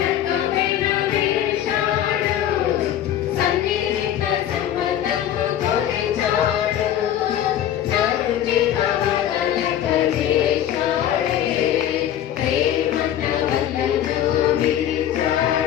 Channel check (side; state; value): right; quieter; 11.0 dB